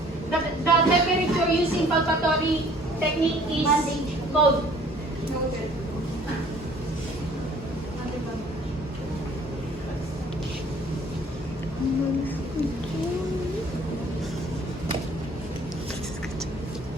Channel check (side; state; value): both; normal; correlation 0.54